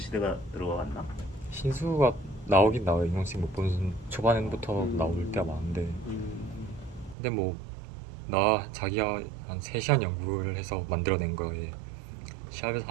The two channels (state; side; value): drops out; left; at 7.2 s